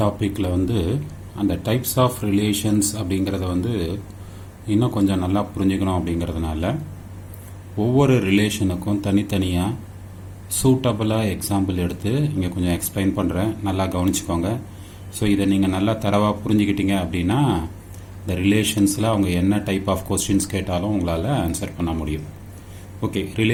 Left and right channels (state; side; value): identical; both; correlation 1.00